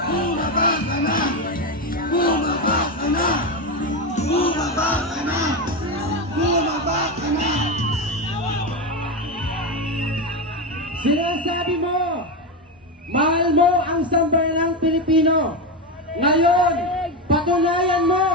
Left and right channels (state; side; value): normal; both; correlation 0.14